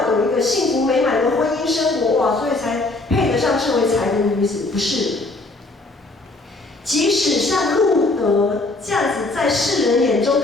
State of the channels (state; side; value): quieter; right; 3.1 dB